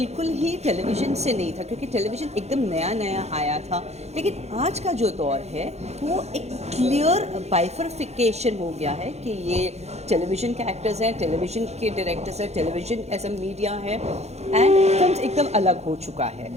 ही टेलीविज़न से नहीं था, क्योंकि टेलीविज़न एकदम नया नया आया था। लेकिन आज का जो दौर है, वो एक क्लियर बाइफर्फिकेशन हो गया है कि ये टेलीविज़न के एक्टर्स हैं, टेलीविज़न के डायरेक्टर्स हैं, टेलीविज़न एज अ मीडिया है, एंड फिल्म एकदम अलग हो चुका है।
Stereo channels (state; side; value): late; left; 0.31 ms